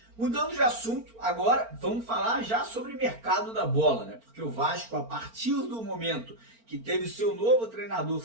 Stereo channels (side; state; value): left; late; 4.4 ms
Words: Mudando de assunto, agora vamos falar já sobre o mercado da bola, né? Porque o Vasco, a partir do momento que teve o seu novo treinador